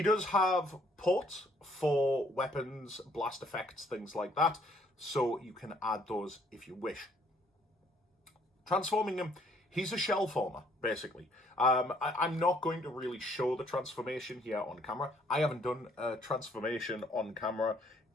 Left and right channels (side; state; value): both; normal; correlation 0.65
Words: does have ports for weapons, blast effects, things like that, so you can add those if you wish. Transforming him, he's a shell former, basically. I'm not going to really show the transformation here on camera. I haven't done a transformation on camera